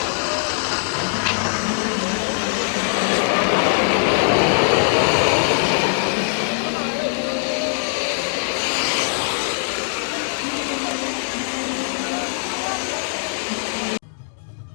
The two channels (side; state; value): right; silent; digital silence